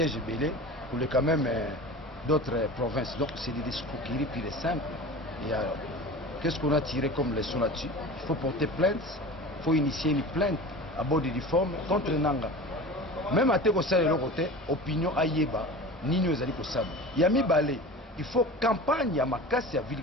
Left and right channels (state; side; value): normal; both; correlation 0.34